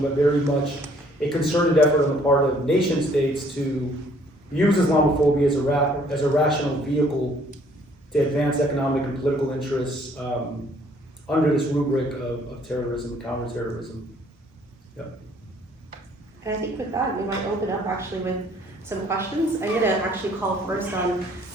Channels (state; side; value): normal; both; correlation 0.61